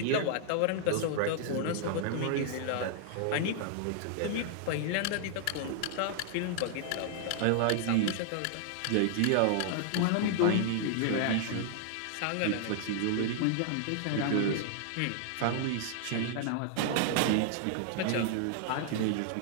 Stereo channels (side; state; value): both; different; correlation -0.01